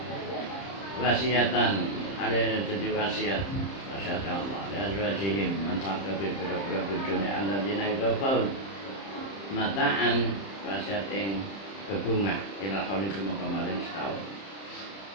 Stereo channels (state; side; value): late; right; 30 ms